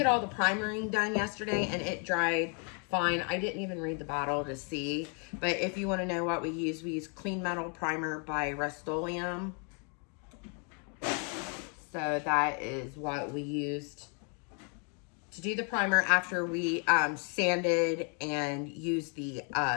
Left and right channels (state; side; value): quieter; right; 38.1 dB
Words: all the primering done yesterday and it dried fine. I didn't even read the bottle to see, but if you want to know what we use Clean Metal Primer by Rust-Oleum. So that is what we used to do the primer after we sanded and used the